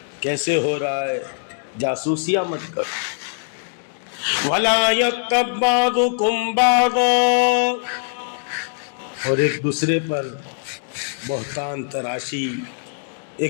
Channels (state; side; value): silent; right; digital silence